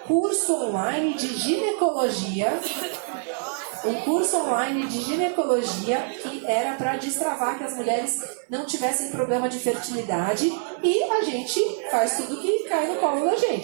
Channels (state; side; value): silent; left; digital silence